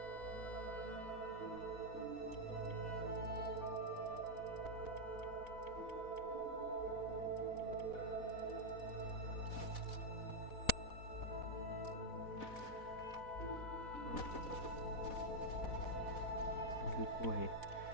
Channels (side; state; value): right; late; 4.1 ms